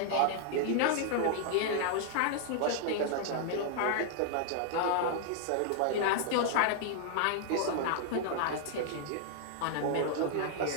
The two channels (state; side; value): different; both; correlation -0.01